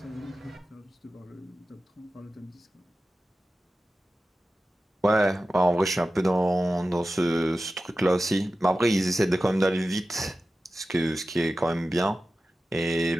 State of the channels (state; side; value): normal; both; correlation 0.94